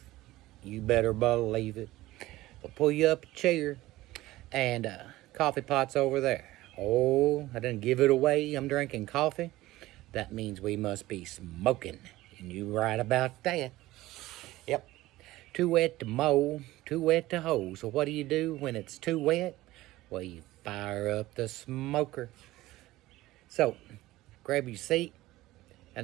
You better believe it. We'll pull you up a chair and coffee pot's over there. Oh, I didn't give it away. I'm drinking coffee. That means we must be smoking. And you right about that. Yep. Too wet to mow, too wet to hoe. So what do you do when it's too wet? Well, you fire up the smoker. So, grab your seat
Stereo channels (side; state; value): left; quieter; 17.3 dB